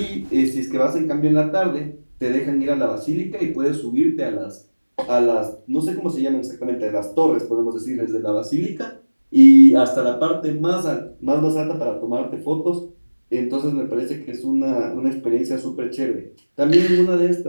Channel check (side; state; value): both; inverted; correlation -1.00